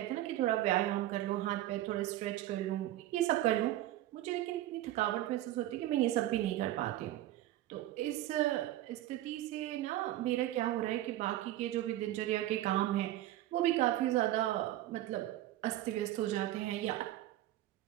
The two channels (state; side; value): quieter; left; 14.5 dB